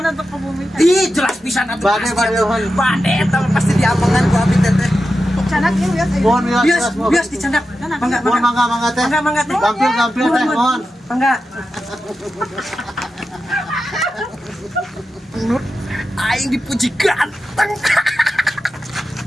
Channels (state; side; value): normal; both; correlation 0.91